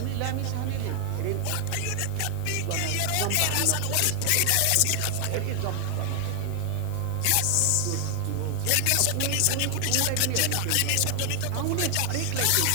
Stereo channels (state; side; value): different; both; correlation 0.00